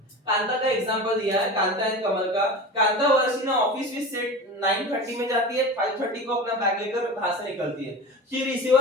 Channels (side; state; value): both; normal; correlation 0.31